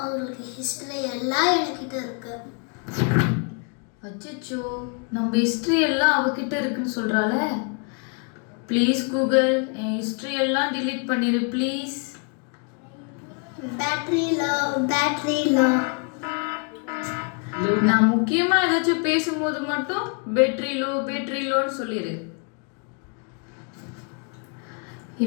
உங்களுக்கு ஹிஸ்ட்ரி எல்லாம் என்கிட்ட இருக்கு. அச்சோ, நம்ம ஹிஸ்ட்ரி எல்லாம் அவகிட்ட இருக்குன்னு சொல்றாள. ப்ளீஸ் கூகுள், என் ஹிஸ்ட்ரி எல்லாம் டிலீட் பண்ணிடு ப்ளீஸ். Battery low. நான் முக்கியமா ஏதாச்சும் பேசும்போது மட்டும் பேட்டரி லோன்னு சொல்லிடு.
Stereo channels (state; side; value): quieter; right; 38.3 dB